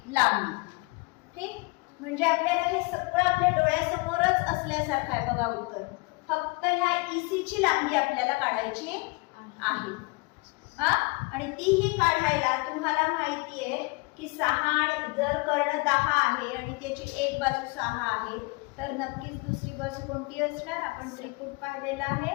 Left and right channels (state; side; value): quieter; right; 27.2 dB